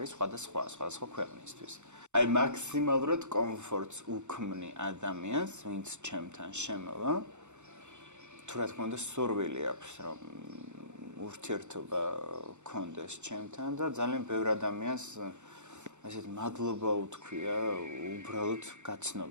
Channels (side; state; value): left; late; 0.84 ms